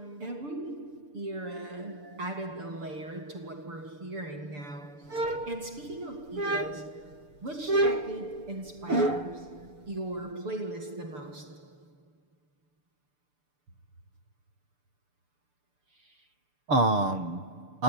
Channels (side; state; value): left; late; 6.8 ms